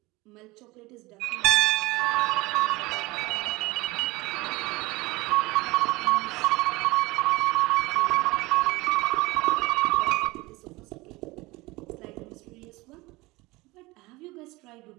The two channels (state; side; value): quieter; left; 21.7 dB